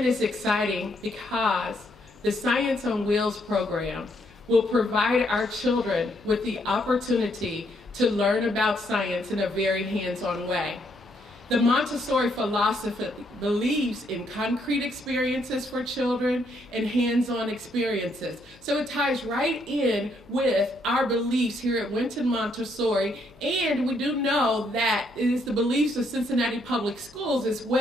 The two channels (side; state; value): left; noise; hum, 26 dB below the sound